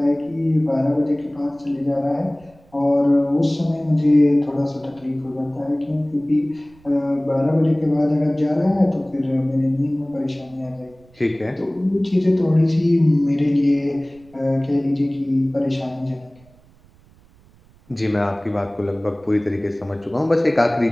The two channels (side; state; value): right; noise; rumble, 28 dB below the sound